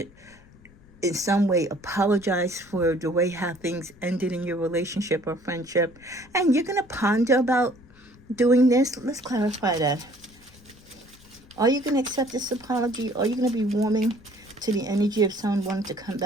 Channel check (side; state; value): left; noise; rumble, 25 dB below the sound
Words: in some way apologize for the way how things ended in your relationship or friendship. And you're going to ponder about doing this. Let's clarify that. Are you going to accept this apology? Are you going to be warming to the energy of someone wanting to come